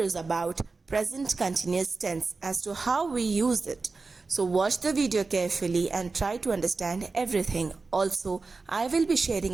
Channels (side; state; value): left; quieter; 4.0 dB